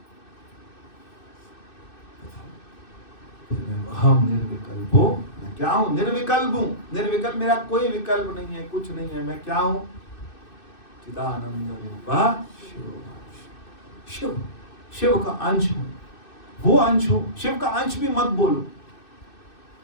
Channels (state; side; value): late; right; 2.6 ms